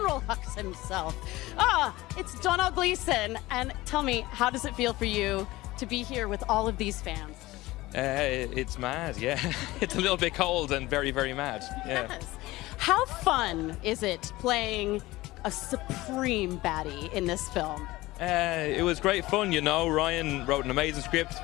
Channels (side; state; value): right; quieter; 18.9 dB